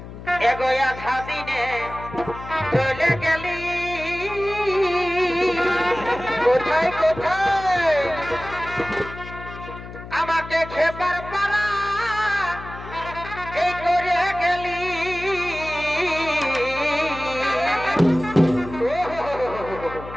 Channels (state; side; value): noise; left; hum, 13 dB below the sound